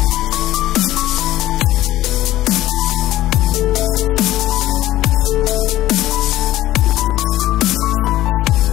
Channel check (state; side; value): quieter; right; 15.0 dB